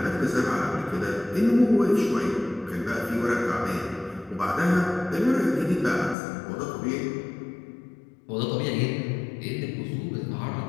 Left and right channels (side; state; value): right; drops out; at 6.2 s